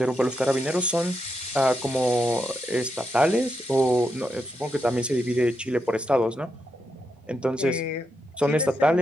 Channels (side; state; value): both; normal; correlation 0.84